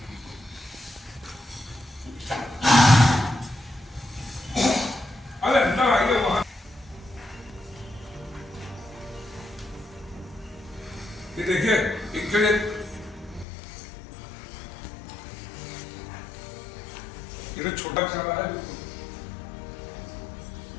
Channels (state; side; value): drops out; right; at 13.5 s